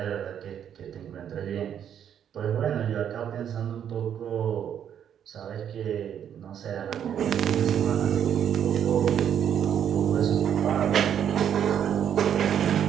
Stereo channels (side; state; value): left; quieter; 9.1 dB